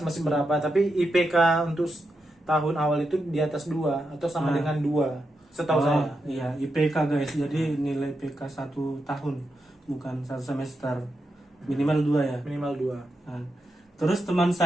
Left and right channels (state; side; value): normal; both; correlation 0.86